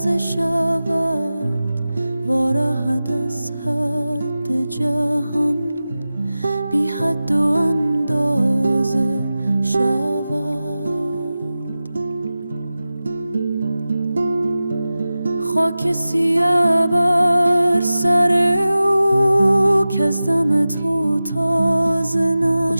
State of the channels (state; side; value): inverted; both; correlation -0.95